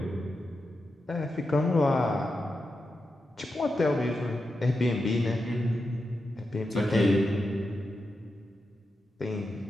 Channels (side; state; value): both; normal; correlation 0.88